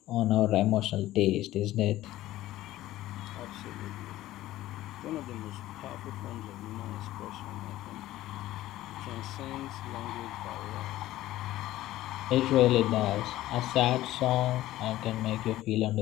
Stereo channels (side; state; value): right; quieter; 15.3 dB